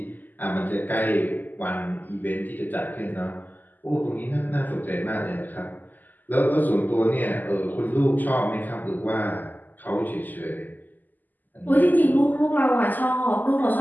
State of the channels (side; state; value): right; late; 0.085 ms